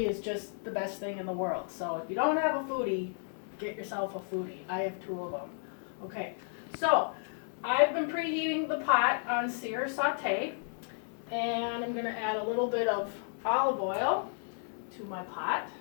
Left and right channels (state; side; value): silent; right; 56 dB below the other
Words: is just the best thing in the world. So if you don't have a foodi, get yourself a foodi. I have 2 of them. Okay, so I've been preheating the pot on sear saute, and I'm going to add a little bit of olive oil to my pot,